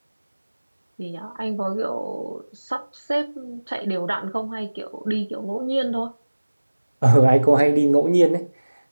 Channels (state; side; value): inverted; both; correlation -1.00